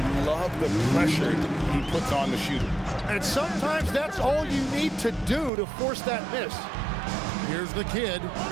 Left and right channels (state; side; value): drops out; left; at 5.5 s